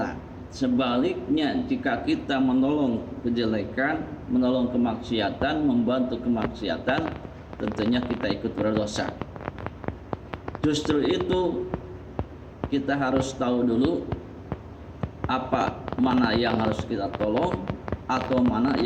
Sebaliknya, jika kita menolong kejelekan, menolong kemaksiatan, membantu kemaksiatan, tentunya kita ikut berdosa. Justru itu kita harus tahu dulu apa mana yang harus kita tolong, atau mana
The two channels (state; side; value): identical; both; correlation 1.00